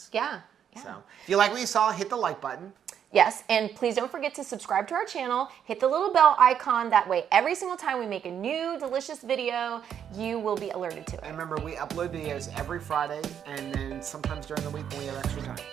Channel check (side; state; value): left; quieter; 8.7 dB